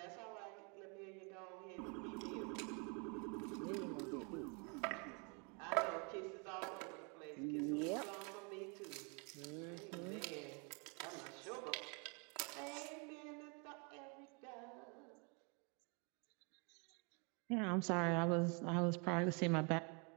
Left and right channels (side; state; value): left; quieter; 34.4 dB